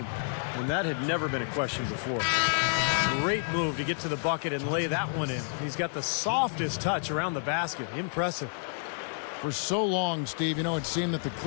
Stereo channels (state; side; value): silent; right; digital silence